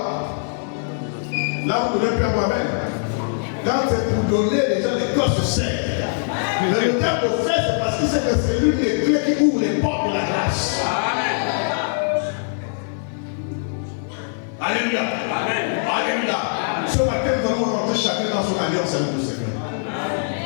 Là vous ne donnez plus à moi-même. Quand c'est pour donner, les gens, les corps se serrent. Mais le terme de fait, c'est parce que c'est l'une des clés qui ouvre les portes de la grâce. Alléluia. Amen. Alléluia. Ce matin, nous allons rentrer chacun dans son alliance avec le Seigneur.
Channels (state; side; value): silent; right; 56 dB below the other